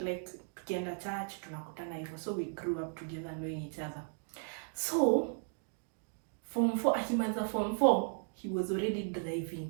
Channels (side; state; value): left; silent; 54 dB below the other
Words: like tukienda church tunakutana hivyo. So we grew up together knowing each other. So form 4, akimaliza form 4, he was already